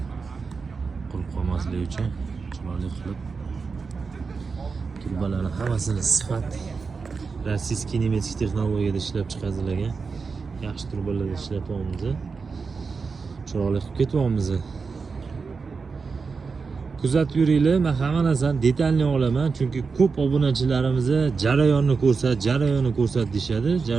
qurib qolmasligi uchun chiroyli qilib turbalarni hammasini sifat rossiyskiy nemetik texnologiyada ishlab chiqarilgan yaxshi turbalarda ishlatyapmiz. Chiroyli qilib ketyapmiz. Kuzatib yuringlar, men hamma narsani detalni olaman, chunki ko'p obunachilarimiz jarayonni ko'rsat deyshadi.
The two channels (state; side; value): quieter; left; 4.9 dB